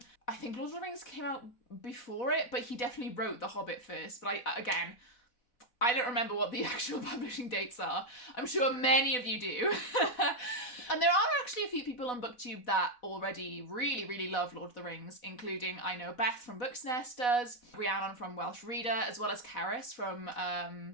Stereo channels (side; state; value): right; late; 4.1 ms